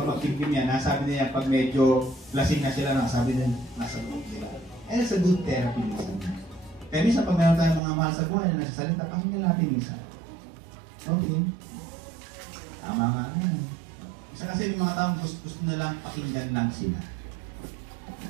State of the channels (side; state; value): left; drops out; at 7.8 s